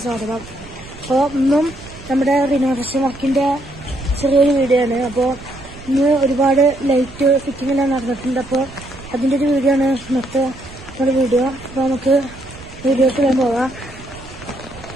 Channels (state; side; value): noise; right; rumble, 18 dB below the sound